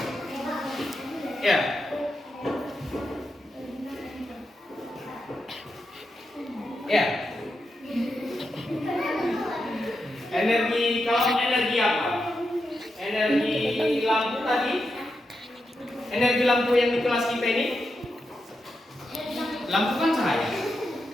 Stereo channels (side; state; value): both; normal; correlation 0.87